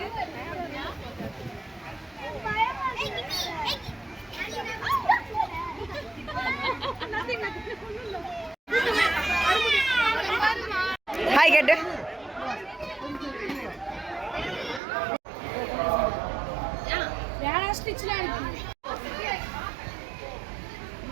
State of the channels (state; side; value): drops out; left; at 14.8 s